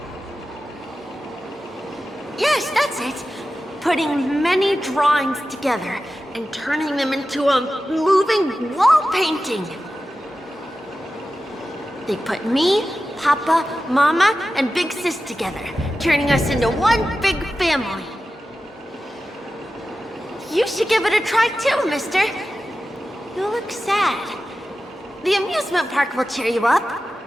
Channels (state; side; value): normal; both; correlation 0.93